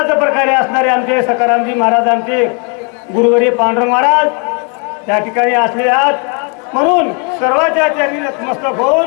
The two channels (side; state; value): right; quieter; 37.2 dB